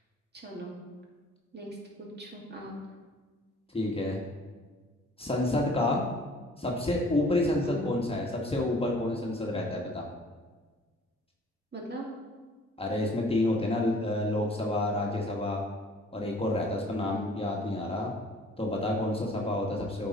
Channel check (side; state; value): both; normal; correlation 0.53